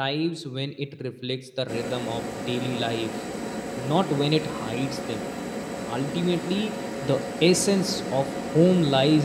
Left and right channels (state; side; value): identical; both; correlation 1.00